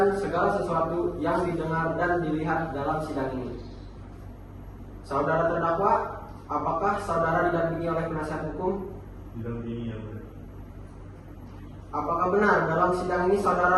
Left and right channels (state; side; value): identical; both; correlation 1.00